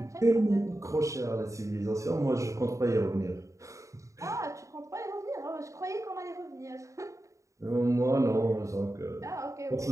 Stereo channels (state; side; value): late; left; 0.15 ms